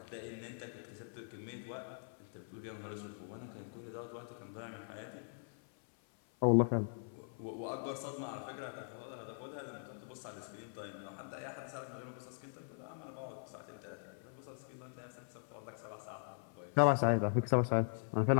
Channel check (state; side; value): silent; right; 50 dB below the other